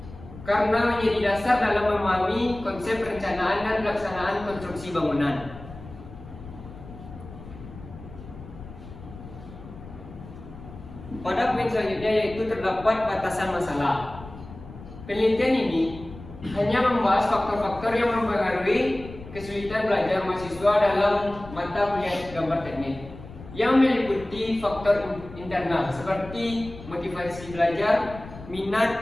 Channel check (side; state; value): left; noise; rumble, 15 dB below the sound